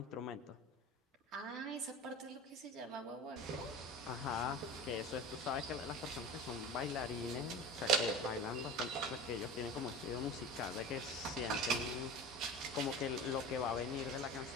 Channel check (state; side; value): normal; both; correlation 0.33